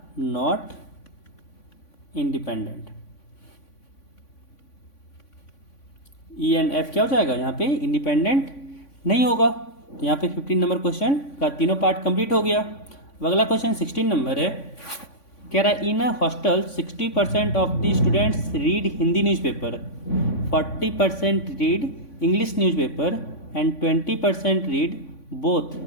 not independent. E and F क्या हो जाएगा यहाँ पे इंडिपेंडेंट नहीं होगा। तो यहाँ पे 15 नंबर क्वेश्चन का तीनों पार्ट कंप्लीट हो गया। अब अगला क्वेश्चन 16 नंबर है कह रहा है in a hostel 60% of the students read Hindi newspaper, 40% read English newspaper and 20% read both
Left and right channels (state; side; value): late; right; 3.5 ms